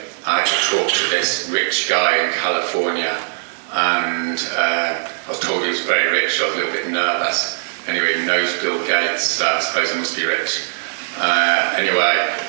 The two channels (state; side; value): silent; left; digital silence